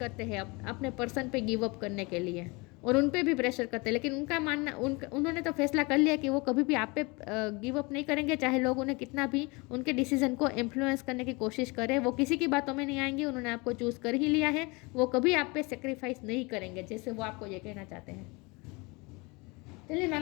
हैं अपने पर्सन पे गिव अप करने के लिए, और उन पे भी प्रेशर करते हैं। लेकिन उनका मानना, उन्होंने तो फैसला कर लिया कि वो कभी भी आप पे गिव अप नहीं करेंगे, चाहे लोग उन्हें कितना भी उनके डिसीजन को इन्फ्लुएंस करने की कोशिश करें। वो किसी की बातों में नहीं आएंगे, उन्होंने आपको चूज़ कर ही लिया है। वो कभी आप पे सेक्रीफाइस नहीं करेंगे, जैसे वो आपको ये कहना चाहते हैं। चलिए मैं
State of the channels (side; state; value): right; quieter; 26.9 dB